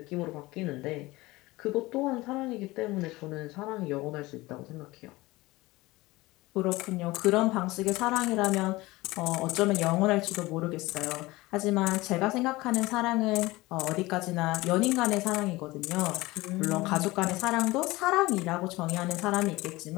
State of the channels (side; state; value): right; quieter; 20.3 dB